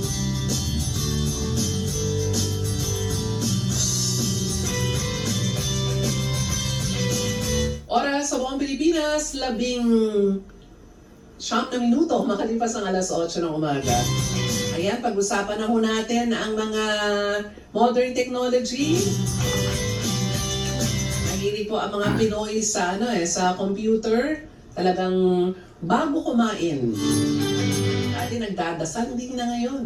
Oras oras sa buong Pilipinas, 19 na minuto, makalipas ang alas 8 ng umaga. Ayan, pag-usapan na ho natin ang mga modern technology. Mahilig po ang mga Pinoy sa, sa computer. Talagang bago kumain. Dati nagdadasal, hindi na ngayon.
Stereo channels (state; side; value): identical; both; correlation 1.00